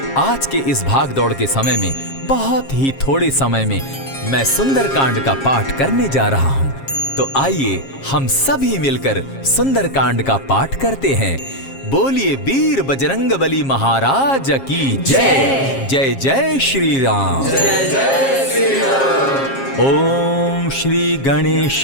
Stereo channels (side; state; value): right; late; 7.4 ms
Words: आज के इस भाग दौड़ के समय में बहुत ही थोड़े समय में मैं सुंदरकांड का पाठ करने जा रहा हूँ। तो आइए हम सभी मिलकर सुंदरकांड का पाठ करते हैं। बोलिए वीर बजरंगबली महाराज की जय। जय जय श्री राम। जय जय श्री राम। ओम श्री